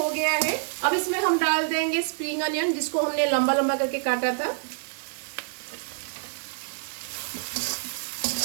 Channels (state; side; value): silent; left; digital silence